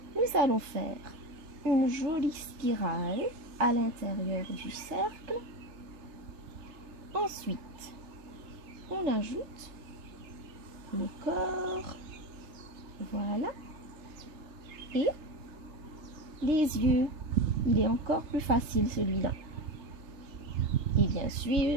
Nous allons faire une jolie spirale à l'intérieur du cercle. Ensuite, on ajoute le corps, voilà, et les yeux. Il est encore plus facile celui-là. Et bien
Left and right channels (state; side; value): late; left; 3.3 ms